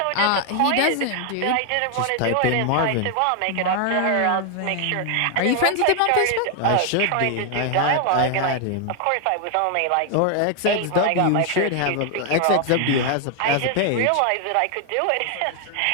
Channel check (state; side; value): different; both; correlation 0.00